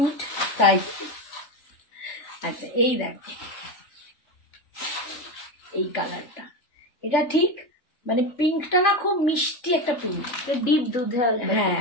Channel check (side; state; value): right; late; 3.4 ms